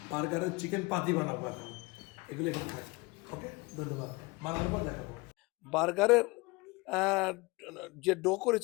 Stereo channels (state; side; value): quieter; right; 25.0 dB